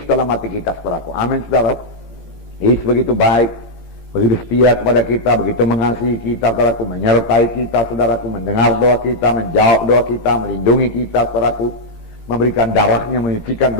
dalam hati kita, saudaraku. Amin, saudara. Yesus begitu baik, begitu setia kepada kita, begitu mengasihi kita, saudaraku, menyertai kita, saudaraku, mendengar doa kita, menjawab doa kita, melindungi kita, saudaraku, memberikan darahnya, menyucikan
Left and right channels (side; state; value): right; late; 17 ms